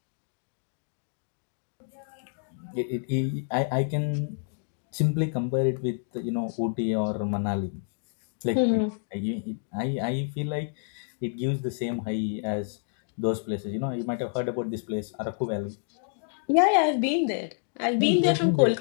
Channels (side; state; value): right; silent; digital silence